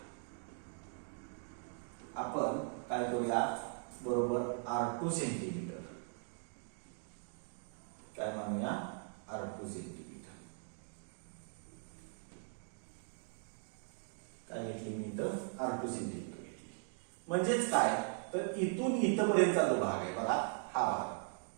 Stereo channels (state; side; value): silent; left; 51 dB below the other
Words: आपण काय करूया, बरोबर R2 सेंटीमीटर काय मानूया, R2 सेंटीमीटर. काय घेतली मी तर R2 सेंटीमीटर घेतली. म्हणजेच काय तर इथून इथपर्यंतचा जो भाग आहे बघा, हा